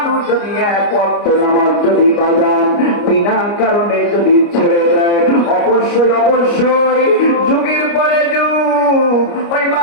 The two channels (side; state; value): right; late; 29 ms